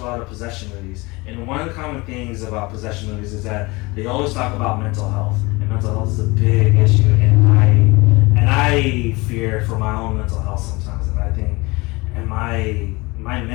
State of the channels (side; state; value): right; quieter; 24.1 dB